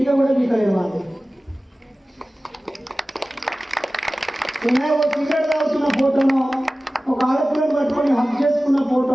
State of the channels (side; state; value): both; normal; correlation 0.97